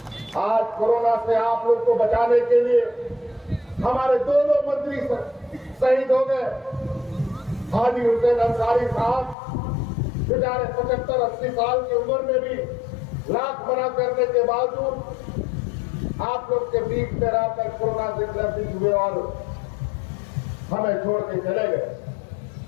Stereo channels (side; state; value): right; drops out; at 9.3 s